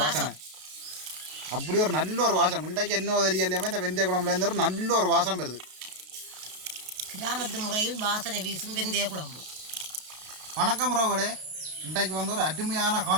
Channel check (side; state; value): left; late; 33 ms